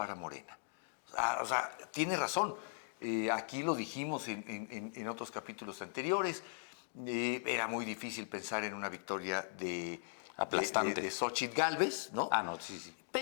Morena. O sea, tiene razón. Aquí lo dijimos en otros capítulos anteriores. Era muy difícil pensar en una victoria aplastante de Xóchitl Gálvez, ¿no? No, sí.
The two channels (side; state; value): right; silent; digital silence